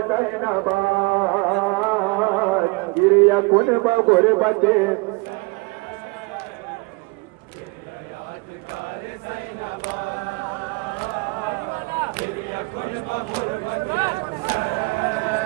ज़ैनबाद गिरिया कुन बगुरबते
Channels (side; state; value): left; quieter; 26.7 dB